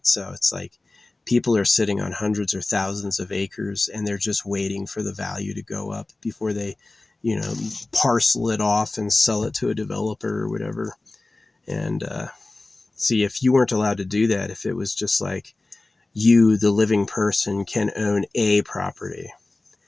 So it's like people are sitting on hundreds or thousands of acres and they're just waiting for the value to go up before they, parcel it off and sell it to a developer or whatever. And see, if you weren't allowed to do that, if it was just like you, the living person, can own a property,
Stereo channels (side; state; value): right; quieter; 3.1 dB